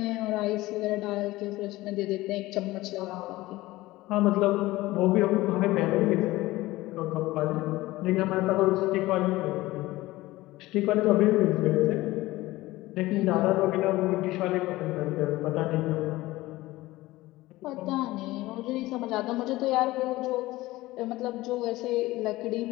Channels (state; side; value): quieter; right; 18.4 dB